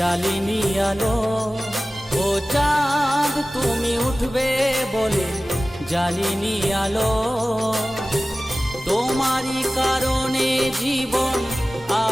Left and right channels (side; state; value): both; normal; correlation 0.97